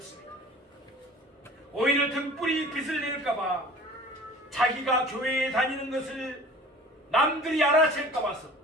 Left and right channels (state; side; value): normal; both; correlation 0.44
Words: 오히려 등불이 빛을 낼까봐 자기가 교회에 다니는 것을 남들이 알아챌까 봐서